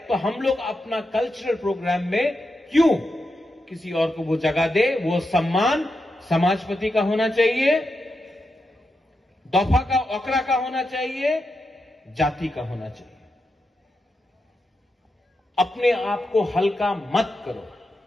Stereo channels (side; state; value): both; normal; correlation 0.87